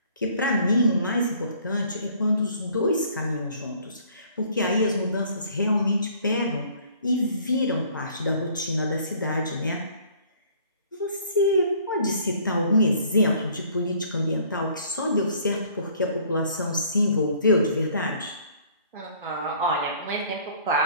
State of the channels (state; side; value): inverted; both; correlation -0.57